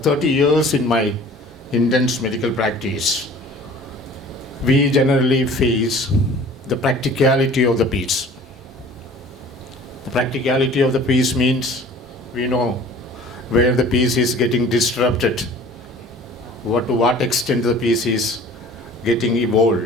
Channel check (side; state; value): both; normal; correlation 0.47